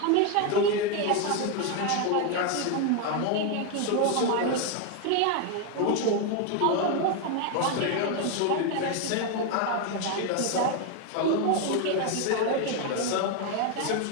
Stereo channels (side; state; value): both; different; correlation 0.01